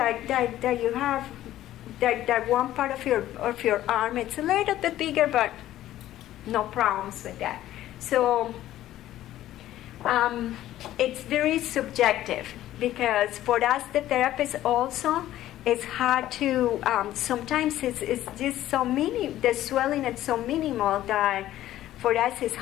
you have that one part of your arm, it's a little bit bigger, but no problems with that. So it's very subjective because for us, the therapists also, it's hard to, sometimes it's just so the swelling is so minimal that for us it's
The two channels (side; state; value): right; quieter; 13.7 dB